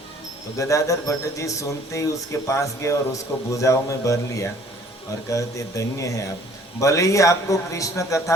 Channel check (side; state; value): both; normal; correlation 0.56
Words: तो गदाधर भट्ट जी सुनते ही उसके पास गए और उसको भुजाओं में भर लिया और कहते धन्य है आप, भले ही आपको कृष्ण